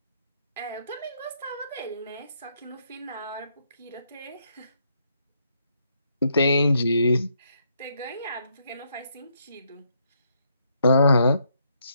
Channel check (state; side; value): inverted; both; correlation -0.75